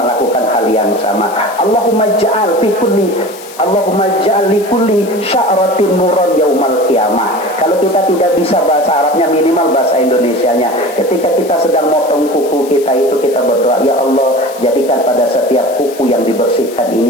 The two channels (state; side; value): noise; left; hiss, 18 dB below the sound